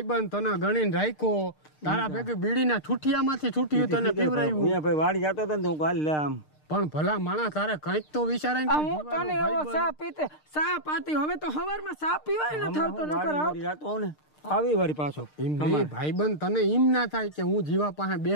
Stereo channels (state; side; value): late; right; 6.6 ms